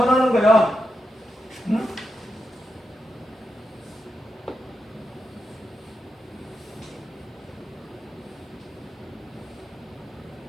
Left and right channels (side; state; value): both; normal; correlation 0.86